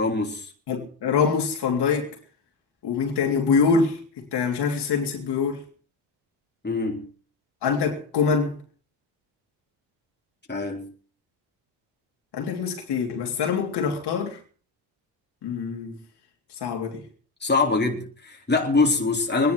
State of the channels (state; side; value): quieter; right; 4.4 dB